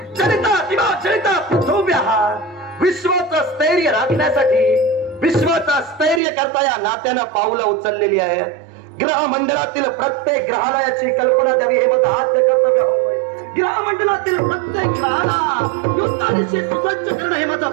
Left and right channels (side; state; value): left; drops out; at 6.2 s